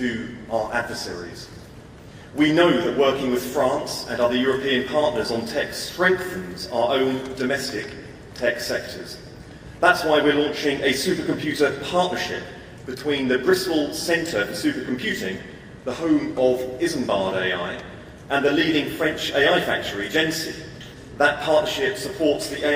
our adversaries. We know that working with France and other European partners on tech strengthens our own domestic tech sectors. That's why we're launching a supercomputer partnership between the Bristol Centre for Supercomputing, the home of Isambard AI, and the leading French AI factory, Gency. That partnership supports the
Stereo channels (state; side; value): identical; both; correlation 1.00